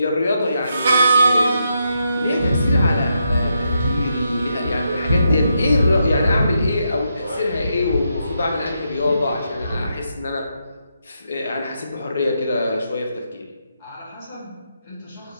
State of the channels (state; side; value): inverted; both; correlation -0.81